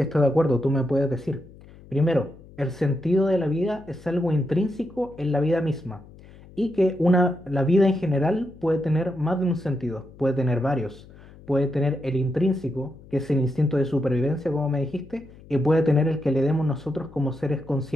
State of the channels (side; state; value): left; noise; hum, 21 dB below the sound